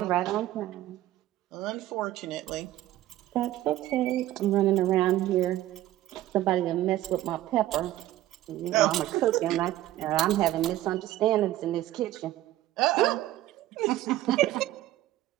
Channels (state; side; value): quieter; left; 14.7 dB